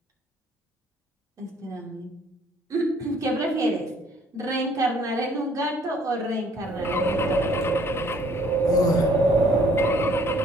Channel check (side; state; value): both; normal; correlation 0.60